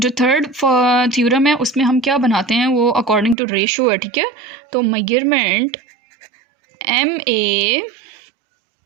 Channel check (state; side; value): drops out; left; at 3.4 s